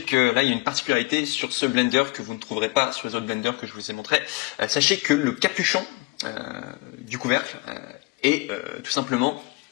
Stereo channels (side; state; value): right; quieter; 24.5 dB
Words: que là il y a une particularité sur ce blender que vous ne trouverez pas sur les autres blenders que je vous ai montré. Sachez que le capuchon du couvercle est tout simplement